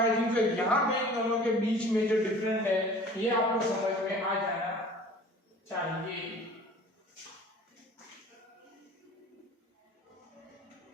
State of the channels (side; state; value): both; normal; correlation 0.46